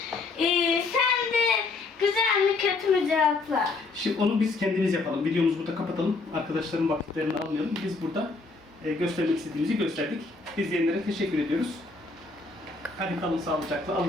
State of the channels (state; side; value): quieter; right; 3.8 dB